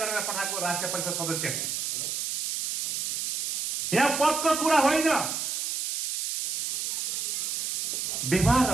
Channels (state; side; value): noise; right; hiss, 2 dB below the sound